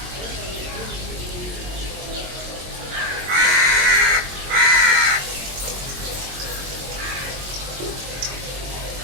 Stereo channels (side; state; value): left; late; 22 ms